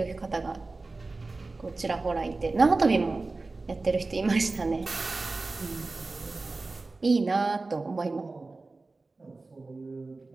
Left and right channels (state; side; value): quieter; left; 3.5 dB